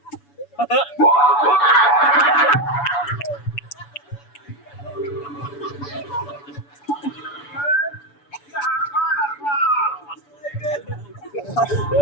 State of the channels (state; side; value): late; right; 7.0 ms